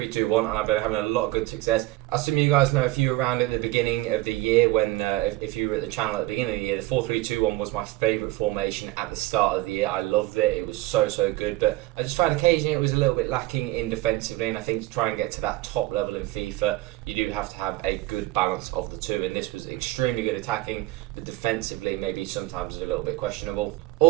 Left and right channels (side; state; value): left; quieter; 18.4 dB